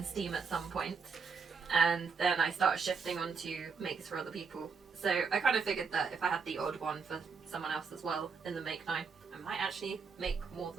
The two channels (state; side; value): quieter; left; 5.3 dB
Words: steam at some point, and then I start shifting onto makes for other people. So I kind of figured that if I had the odd one for someone else as well in the Make 9, I might actually make more